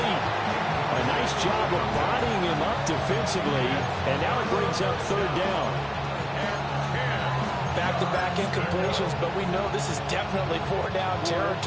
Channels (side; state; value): both; identical; correlation 1.00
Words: A nice job of bodying him up defensively, and now it brings up 3rd down. Back-to-back incompletions, but we know this is definitely 4-down